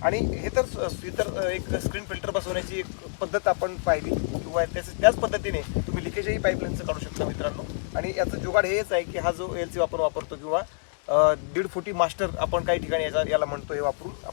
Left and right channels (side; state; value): right; silent; digital silence